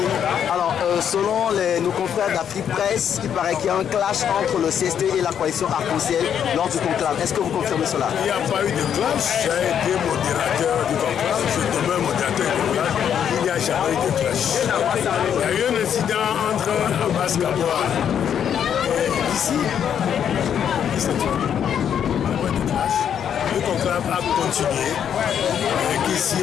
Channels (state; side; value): quieter; right; 8.7 dB